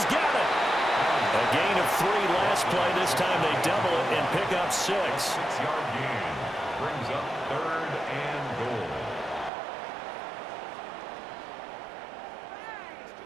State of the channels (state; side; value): drops out; left; at 9.5 s